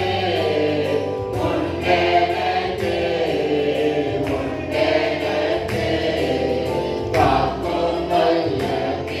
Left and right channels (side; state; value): both; identical; correlation 1.00